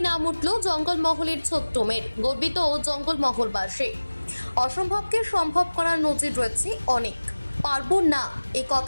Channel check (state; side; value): inverted; both; correlation -1.00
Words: নাম উঠল জঙ্গলমহলের ছোট্ট মেয়ের। গর্বিত জঙ্গলমহলবাসী। অসম্ভবকে সম্ভব করার নজির রয়েছে অনেক। পারবো না এই